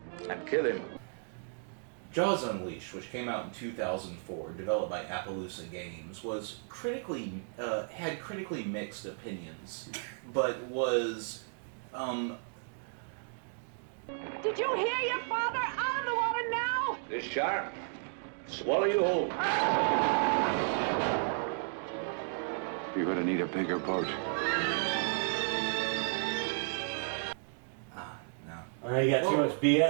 and kill him. Jaws Unleashed, which came out in 2004, developed by Appaloosa Games, was had critically mixed opinions, but was Did you hear your father? Out of the water now! This shark, swallow you whole. You're gonna need a bigger boat. Alright, you got too much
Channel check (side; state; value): left; silent; 55 dB below the other